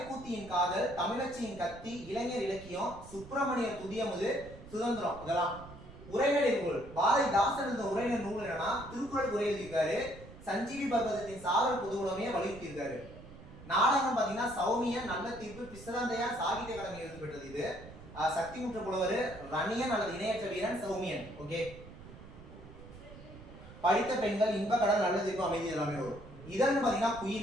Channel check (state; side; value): noise; right; rumble, 17 dB below the sound